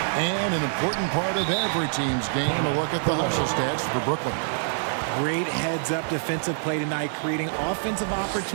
And an important part of every team's game, a look at the hustle stats for Brooklyn. Great heads-up defensive play tonight, creating offensive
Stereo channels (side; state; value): left; silent; 57 dB below the other